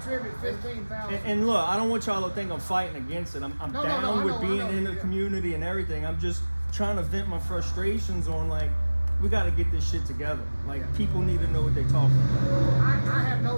15,000. And look, I don't want y'all to think I'm fighting against it. I'm No, down I with know, being I know, in the yeah. community and everything. I'm just trying to vent my frustrations on, like, we got to get this shit together. Like, Yeah. people need to know what they're talking about. I have no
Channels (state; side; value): inverted; both; correlation -1.00